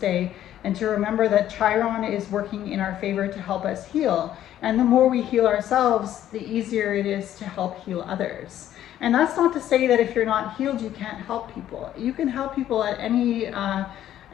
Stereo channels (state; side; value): quieter; right; 11.9 dB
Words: and to remember that Chiron is working in our favor to help us heal. And the more we heal ourselves, the easier it is to help heal others. And that's not to say that if you're not healed, you can't help people. You can help people at any